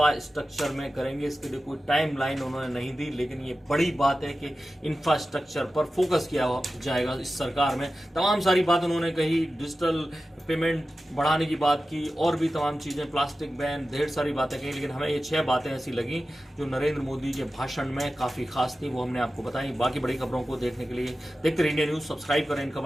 में करेंगे। इसके लिए कोई टाइम लाइन उन्होंने नहीं दी, लेकिन ये बड़ी बात है कि इंफ्रास्ट्रक्चर पर फोकस किया जाएगा इस सरकार में। तमाम सारी बात उन्होंने कही, डिजिटल पेमेंट बढ़ाने की बात की, और भी तमाम चीज़ें, प्लास्टिक बैन, ढेर सारी बातें कही, लेकिन हमें ये 6 बातें ऐसी लगी जो नरेंद्र मोदी के भाषण में काफ़ी खास थी, वो हमने आपको बताई। बाकी बड़ी खबरों को देखने के लिए देखते रहिए इंडिया न्यूज़, सब्सक्राइब करें इन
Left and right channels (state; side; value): normal; both; correlation 0.94